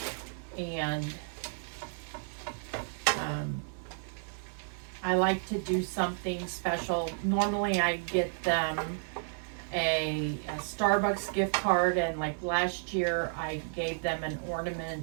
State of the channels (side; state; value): left; silent; digital silence